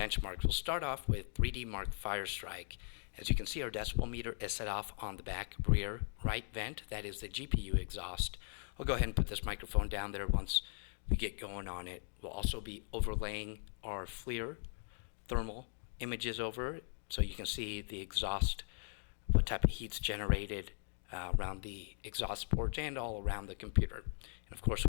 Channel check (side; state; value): right; silent; 52 dB below the other